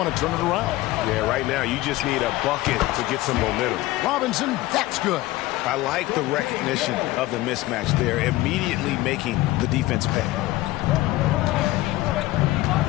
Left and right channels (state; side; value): quieter; right; 17.6 dB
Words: to turn it around. Yeah, right now you just need a bucket to get some momentum. Robinson, that's good. I like the recognition of the mismatch there, immediately making the defense pay.